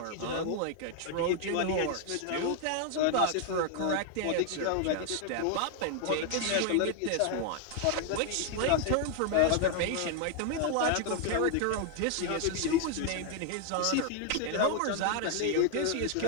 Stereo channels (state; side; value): different; both; correlation 0.00